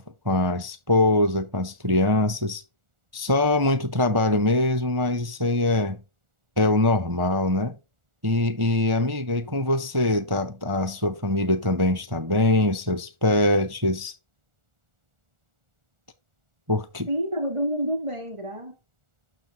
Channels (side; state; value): left; late; 1.4 ms